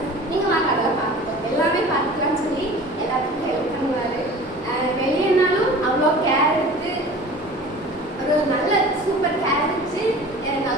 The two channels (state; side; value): normal; both; correlation 0.41